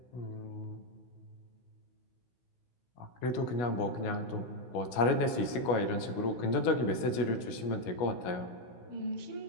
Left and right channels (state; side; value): late; right; 16 ms